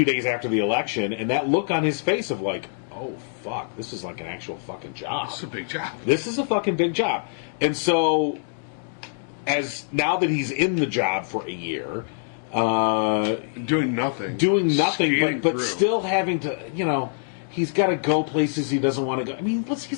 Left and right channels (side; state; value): right; silent; digital silence